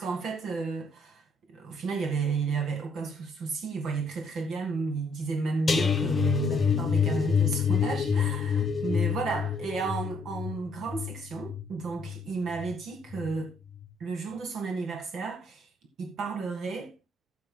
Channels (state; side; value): normal; both; correlation 0.67